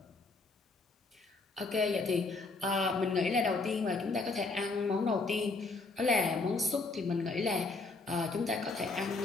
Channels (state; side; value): quieter; right; 3.7 dB